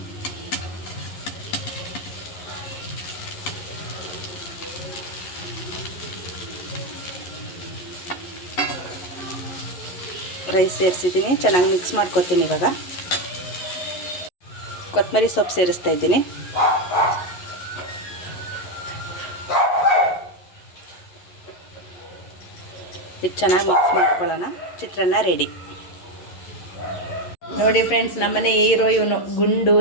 ರೈಸ್ ಸೇರಿಸಿದ್ದೀನಿ, ಚೆನ್ನಾಗಿ ಮಿಕ್ಸ್ ಮಾಡ್ಕೊತೀನಿ. ಇವಾಗ ಕೊತ್ತಂಬರಿ ಸೊಪ್ಪು ಸೇರಿಸ್ತಾ ಇದ್ದೀನಿ. ಇದು ಚೆನ್ನಾಗಿ ಮಿಕ್ಸ್ ಮಾಡ್ಕೊಳ್ಳೋಣ. ಚಿತ್ರಾನ್ನ ರೆಡಿ. ನೋಡಿ ಫ್ರೆಂಡ್ಸ್, ನಮ್ಮನೆ ಹೀರೋ ಇವನು, ಗುಂಡು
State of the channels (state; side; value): late; right; 11 ms